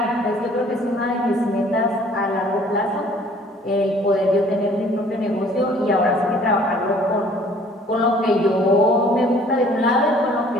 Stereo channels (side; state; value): both; normal; correlation 0.55